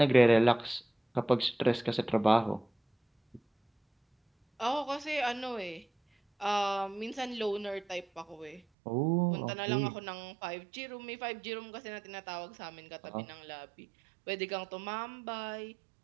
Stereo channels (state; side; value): drops out; left; at 8.6 s